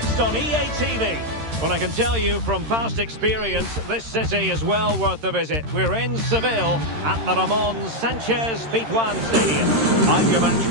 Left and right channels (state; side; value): late; left; 13 ms